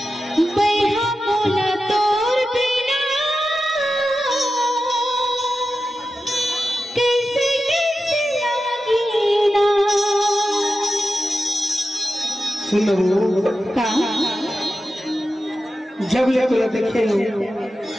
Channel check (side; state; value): both; normal; correlation 0.91